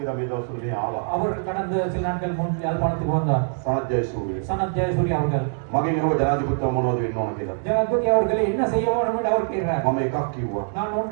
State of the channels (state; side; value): silent; left; digital silence